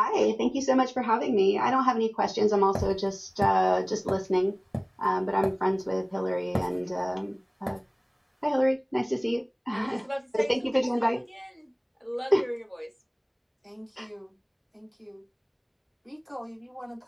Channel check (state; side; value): identical; both; correlation 1.00